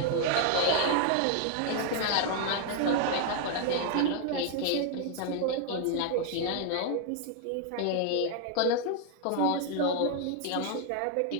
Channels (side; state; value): both; different; correlation 0.00